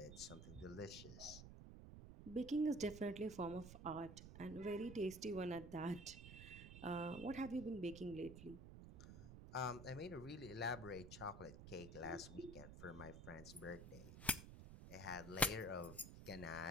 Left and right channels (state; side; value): noise; right; rumble, 12 dB below the sound